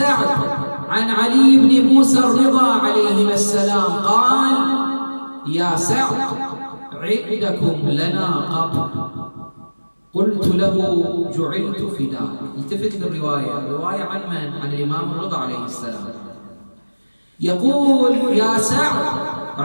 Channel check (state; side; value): inverted; both; correlation -1.00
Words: عن علي بن موسى الرضا عليهما السلام قال: يا سعد، عندكم لنا قبر. قلت له: جعلت فداك. التفت للرواية، الرواية عن من؟ عن الإمام الرضا عليه السلام. يقول: يا سعد،